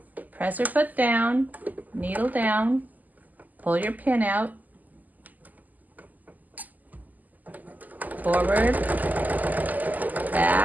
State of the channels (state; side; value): late; left; 0.081 ms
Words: presser foot down, needle down, pull your pin out, forward,